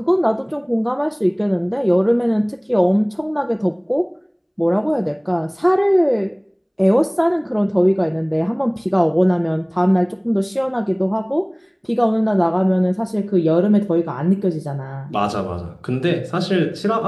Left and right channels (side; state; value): both; identical; correlation 1.00